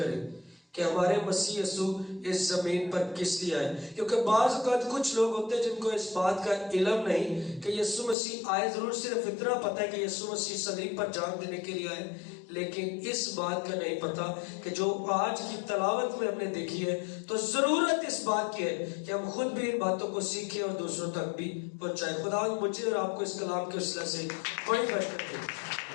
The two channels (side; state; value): right; drops out; at 8.2 s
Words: کہ ہمارے مسیح یسوع اس زمین پر کس لیے آئے۔ کیونکہ بعض اوقات کچھ لوگ ہوتے ہیں جن کو اس بات کا علم نہیں کہ یسوع مسیح آئے، ضرور صرف اتنا پتہ ہے کہ یسوع مسیح صلیب پر جان دینے کے لیے آئے، لیکن اس بات کا نہیں پتا کہ جو آج کی تلاوت میں ہم نے دیکھی ہے، تو ضرورت اس بات کی ہے کہ ہم خود بھی ان باتوں کو سیکھیں اور دوسروں تک بھی پہنچائیں۔ خدا مجھے اور آپ کو اس کلام کے وسیلہ سے بڑی برکت دے۔